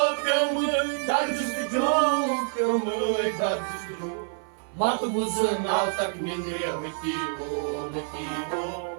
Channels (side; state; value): left; silent; 60 dB below the other